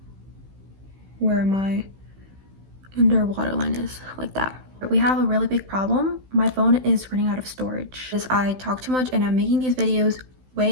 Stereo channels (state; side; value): late; left; 16 ms